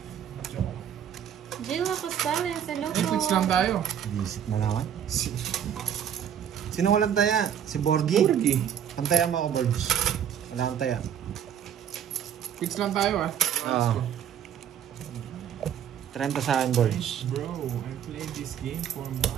Jill Apostales, hello po. Fix lang tayo. Visit na naman. Sino walang taya? Si Borgie? Borgie. Ang taya mo ako, Borgie. Wala kang taya. Fix lang tayo ah. Oo. 30 sa akin, boys. Bro, I played this game for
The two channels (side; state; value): left; quieter; 9.1 dB